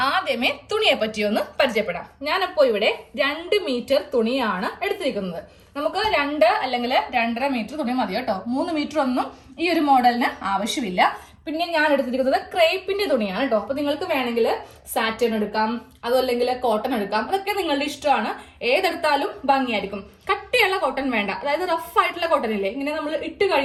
ആദ്യമേ തുണിയെ പറ്റി ഒന്ന് പരിചയപ്പെടാം. ഞാനപ്പോ ഇവിടെ 2 മീറ്റർ തുണിയാണ് എടുത്തിരിക്കുന്നത്. നമുക്ക് 2 അല്ലെങ്കിൽ 2.5 മീറ്റർ തുണി മതി കേട്ടോ. 3 മീറ്റർ ഒന്നും ഈ ഒരു മോഡലിന് ആവശ്യമില്ല. പിന്നെ ഞാൻ എടുത്തിരിക്കുന്നത് ക്രേപ്പിന്റെ തുണിയാണ് കേട്ടോ. അപ്പൊ നിങ്ങൾക്ക് വേണമെങ്കിൽ സാറ്റൻ എടുക്കാം, അതല്ലെങ്കിൽ കോട്ടൺ എടുക്കാം. അതൊക്കെ നിങ്ങളുടെ ഇഷ്ടമാണ്. ഏതെടുത്താലും ഭംഗിയായിരിക്കും. കട്ടിയുള്ള കോട്ടൺ വേണ്ട, അതായത് റഫ് ആയിട്ടുള്ള കോട്ടൺ ഇല്ലേ, ഇങ്ങനെ നമ്മൾ ഇട്ട്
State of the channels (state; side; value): identical; both; correlation 1.00